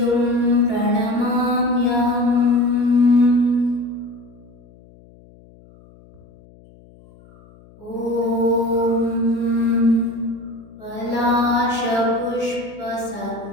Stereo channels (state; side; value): noise; left; hum, 25 dB below the sound